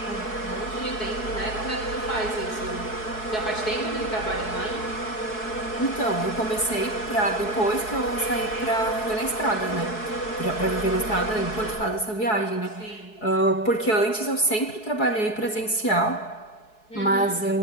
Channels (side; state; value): right; late; 4.7 ms